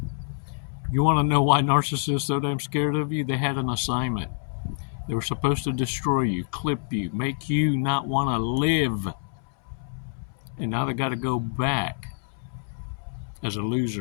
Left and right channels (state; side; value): silent; right; 61 dB below the other